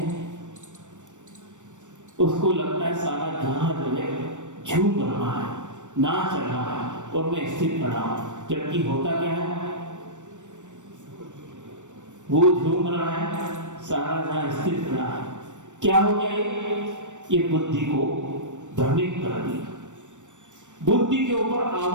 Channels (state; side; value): late; left; 0.85 ms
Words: उसको लगता है सारा जहां जो है झूम रहा है, नाच रहा है और मैं स्थिर खड़ा हूं, जबकि होता क्या है? वो झूम रहा है, सारा जहां स्थिर खड़ा है। क्या हो गया? ये बुद्धि को भ्रमित कर दिया, बुद्धि के ऊपर